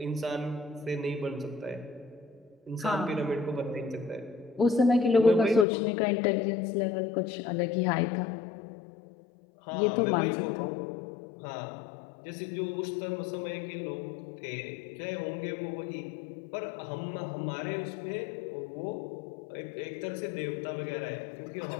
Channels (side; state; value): right; drops out; at 5.7 s